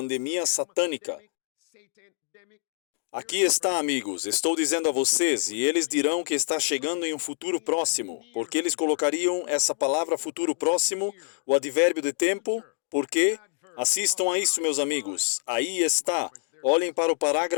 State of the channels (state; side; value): silent; right; digital silence